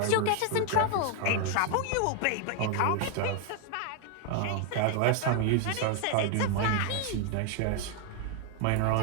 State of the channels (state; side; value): different; both; correlation 0.00